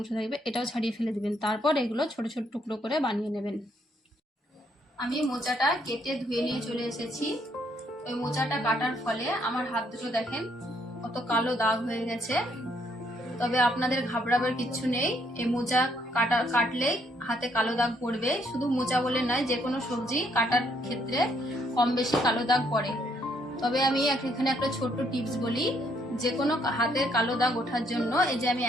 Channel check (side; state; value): both; normal; correlation 0.70